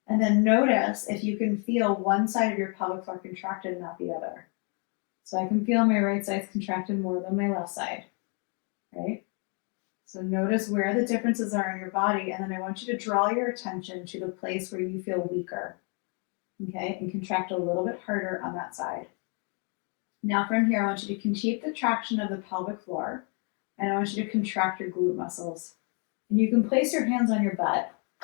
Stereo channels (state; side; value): quieter; right; 37.5 dB